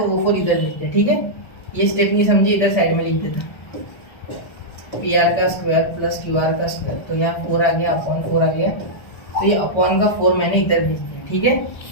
वो 4 इधर भेज दिया। ठीक है, ये स्टेप नहीं समझी, इधर साइड में लिख देता, पी आर का स्क्वायर प्लस क्यू आर का स्क्वायर, तो यहाँ 4 आ गया, अपॉन 4 आ गया, तो ये अपॉन का 4 मैंने इधर भेज दिया। ठीक है,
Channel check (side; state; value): right; late; 1.3 ms